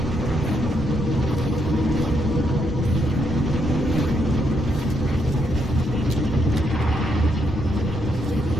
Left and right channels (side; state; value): both; normal; correlation 0.77